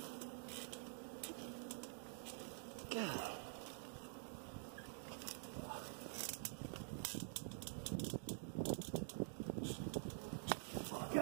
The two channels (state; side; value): silent; left; digital silence